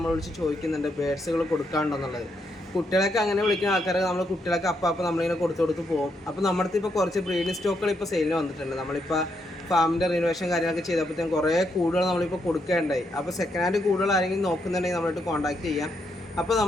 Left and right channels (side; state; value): both; normal; correlation 0.78